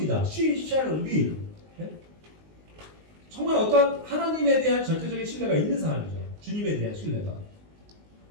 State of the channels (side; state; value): left; late; 19 ms